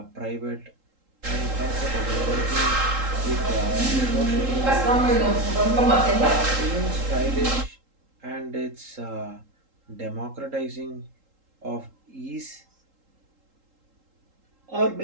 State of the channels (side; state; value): left; late; 3.8 ms